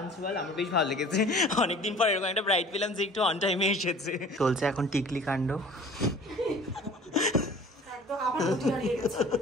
আমার বেশ ভালো লেগেছে। অনেকদিন পর এরকম একটা ব্রাইড পেলাম যে একটু অন টাইমে এসেছে। চলছে এখন টিকলি কাণ্ড। একদম আবার দাঁড়িয়ে গেছে।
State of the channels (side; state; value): both; normal; correlation 0.47